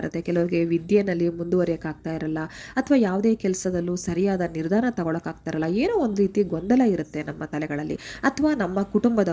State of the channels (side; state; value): both; identical; correlation 1.00